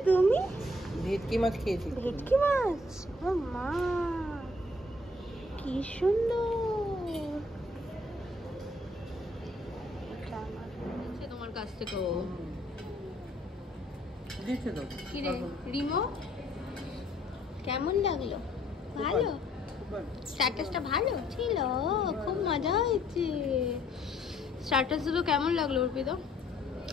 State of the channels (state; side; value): normal; both; correlation 0.62